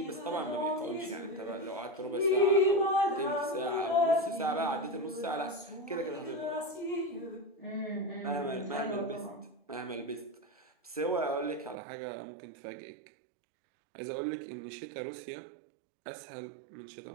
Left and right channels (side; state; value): left; drops out; at 11.8 s